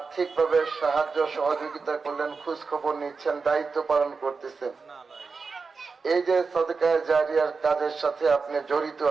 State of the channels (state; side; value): quieter; left; 4.7 dB